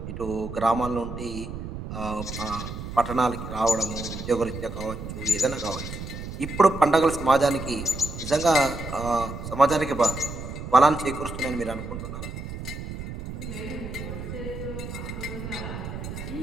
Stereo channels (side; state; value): right; noise; rumble, 8 dB below the sound